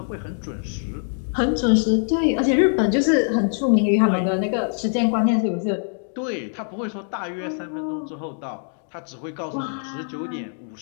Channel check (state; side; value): silent; right; digital silence